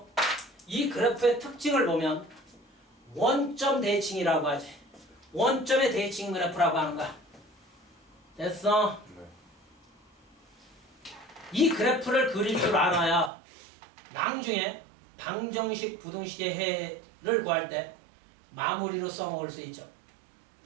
이 그래프의 특징을 보면 원점 대칭이라고 하지. 원점의 대칭 그래프라고 하는 거야. 됐어? 네. 이 그래프를 그릴 줄 알아야 나중에 방정식, 부등식의 해를 구할 때 마무리로 써먹을 수 있죠.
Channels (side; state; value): left; drops out; at 13.3 s